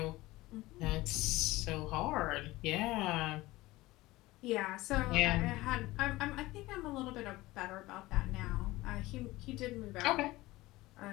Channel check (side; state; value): right; quieter; 19.1 dB